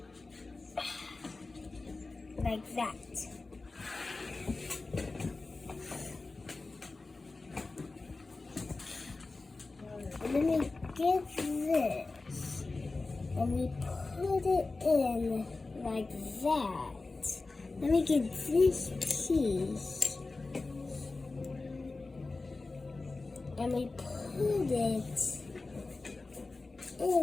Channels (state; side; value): quieter; right; 3.6 dB